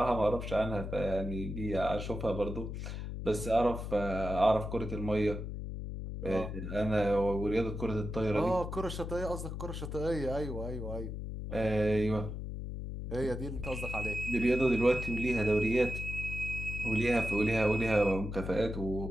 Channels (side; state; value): left; noise; hum, 6 dB below the sound